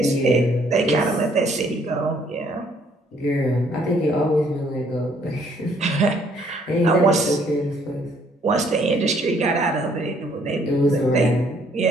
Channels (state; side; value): normal; both; correlation 0.65